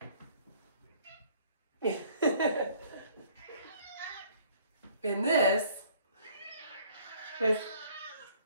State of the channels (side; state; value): both; inverted; correlation -0.58